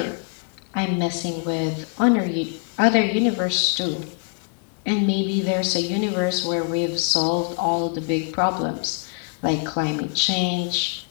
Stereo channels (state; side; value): quieter; right; 37.8 dB